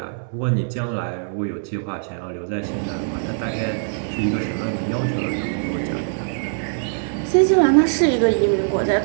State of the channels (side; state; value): left; silent; digital silence